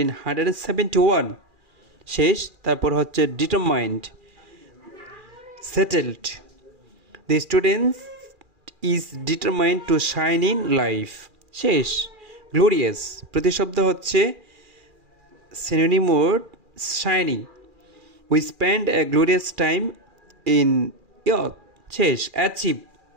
শেষ। তারপর হচ্ছে determined, settled. The student is determined to shine in life. শেষ। glorious প্রতিশব্দ হচ্ছে synonym word shining. We spend a glorious time in youth. শেষ। achieve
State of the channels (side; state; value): left; late; 2.4 ms